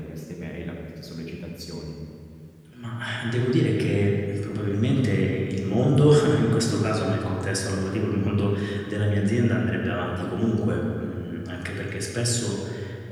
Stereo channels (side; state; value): both; identical; correlation 1.00